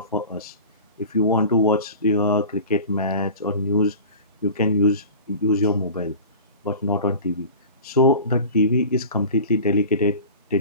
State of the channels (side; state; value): both; inverted; correlation -0.38